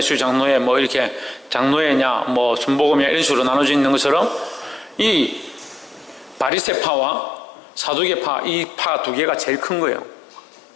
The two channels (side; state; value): right; drops out; at 6.5 s